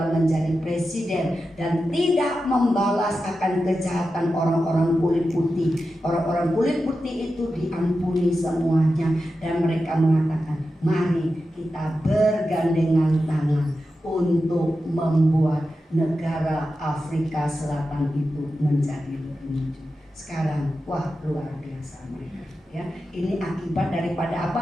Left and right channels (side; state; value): both; normal; correlation 0.91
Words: menjadi presiden dan tidak membalas akan kejahatan orang-orang kulit putih. Orang-orang kulit putih itu diampuni semuanya dan mereka mengatakan, mari kita bergandengan tangan untuk membuat negara Afrika Selatan itu menjadi lebih maju. Sekarang, wah, luar biasa mereka. Ya, ini akibat daripada